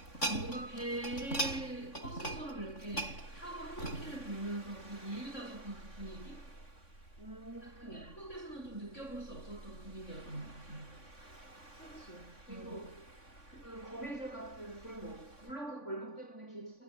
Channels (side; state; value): right; late; 3.5 ms